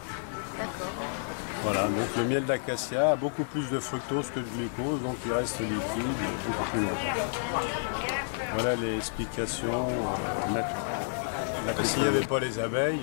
D'accord. Voilà, donc le miel d'acacia a beaucoup plus de fructose que de glucose, donc il reste liquide beaucoup plus longtemps. Voilà les explications naturelles. S'il n'y avait pas les abeilles, il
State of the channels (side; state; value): right; silent; digital silence